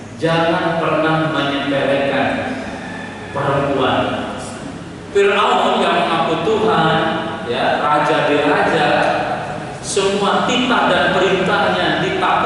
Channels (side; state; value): both; identical; correlation 1.00